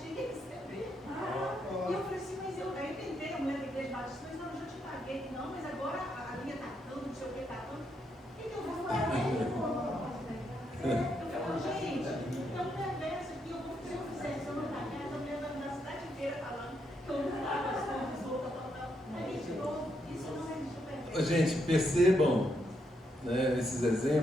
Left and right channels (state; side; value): normal; both; correlation 0.79